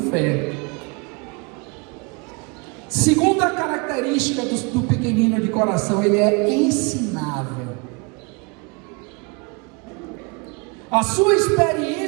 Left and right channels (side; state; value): left; quieter; 30.6 dB